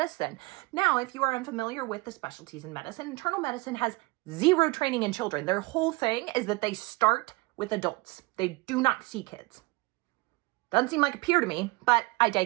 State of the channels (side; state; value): left; quieter; 24.3 dB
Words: Now, if you are unfamiliar with the specialties in medicine, internal medicine has zero training in children. Their whole thing is that they start with adults. They do not see kids. Doesn't seem like a peer to me, but I